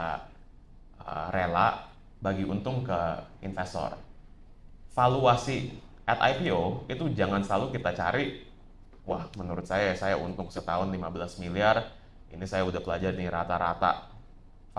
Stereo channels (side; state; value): both; identical; correlation 1.00